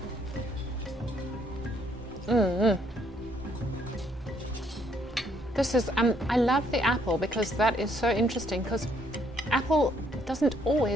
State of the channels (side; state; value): both; normal; correlation 0.68